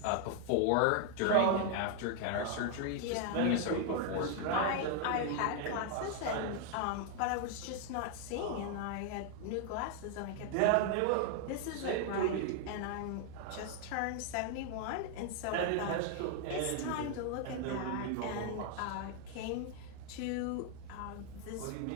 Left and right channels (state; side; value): different; both; correlation 0.00